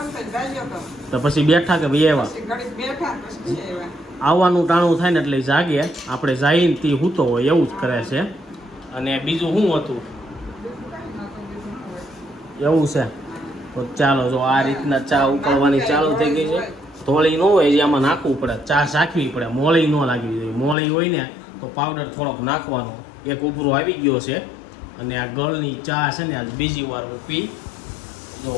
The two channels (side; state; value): right; drops out; at 20.8 s